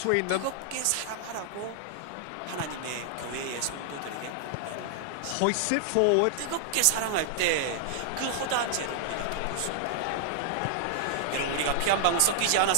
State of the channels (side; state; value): both; different; correlation -0.01